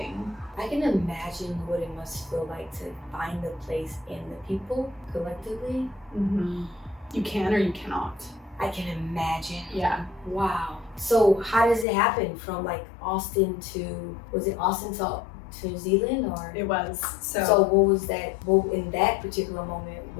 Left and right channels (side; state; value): right; drops out; at 11.9 s